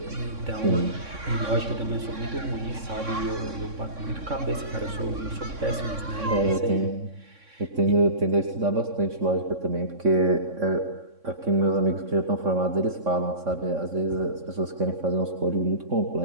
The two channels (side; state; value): left; late; 3.6 ms